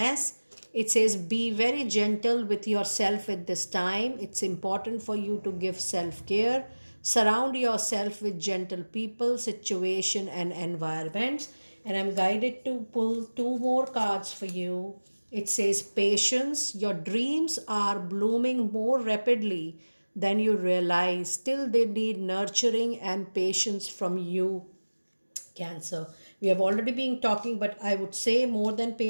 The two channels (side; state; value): both; inverted; correlation -1.00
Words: It says be very gentle with yourself at this time. It's important for you to give self-care. Surround yourself with gentle people, situation and environments. And I'm guided to pull two more cards for you. It says patience. Your dreams are blooming more rapidly than you realize. Still, they need nurturing and patience from you, Cancer. We have already been talking, but I would say more than